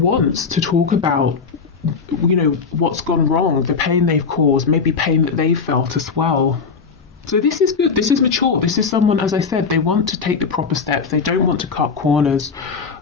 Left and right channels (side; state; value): right; quieter; 5.3 dB